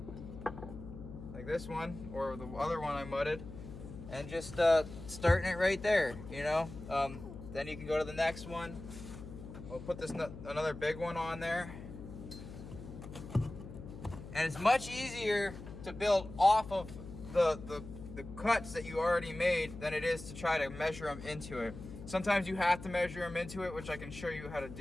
like this one, or the other one I mudded, and just starting it right there, you know. Then you can go to the next one. We'll put this another big one on there, and it's much easier to build off of the cuts that you already made than it is to try to measure them into it. Sometimes you have to measure them into it, which I can show you how to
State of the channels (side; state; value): left; noise; hum, 12 dB below the sound